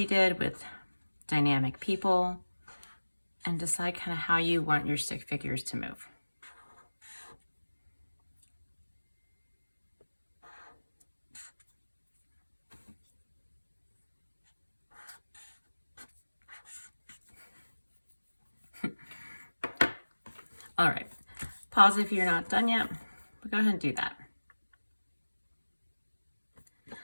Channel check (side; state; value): both; inverted; correlation -1.00